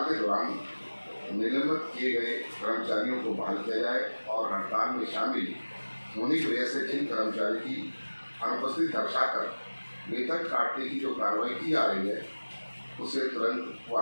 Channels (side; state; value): both; inverted; correlation -1.00